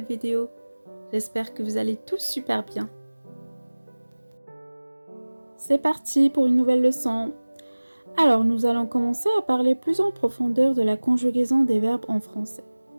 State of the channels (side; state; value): both; inverted; correlation -1.00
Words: vidéo. J'espère que vous allez tous super bien. C'est parti pour une nouvelle leçon. Alors nous allons commencer à parler plus en profondeur de la conjugaison des verbes en français.